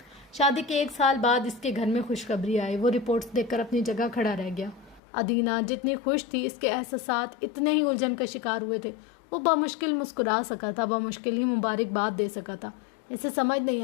شادی کے 1 سال بعد اس کے گھر میں خوشخبری آئی۔ وہ رپورٹس دیکھ کر اپنی جگہ کھڑا رہ گیا۔ ادینہ جتنی خوش تھی، اس کے احساسات اتنے ہی الجھن کا شکار ہوئے تھے۔ وہ بمشکل مسکرا سکا تھا، بمشکل ہی مبارکباد دے سکا تھا۔ اسے سمجھ نہیں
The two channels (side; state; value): right; drops out; at 5.0 s